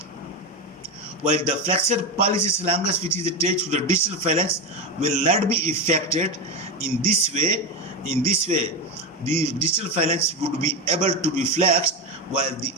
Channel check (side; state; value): both; normal; correlation 0.16